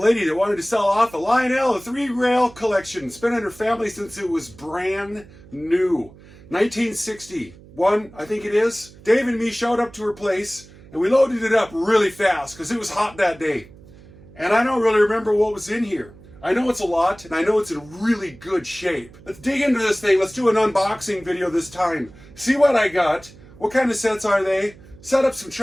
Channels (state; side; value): noise; right; hum, 22 dB below the sound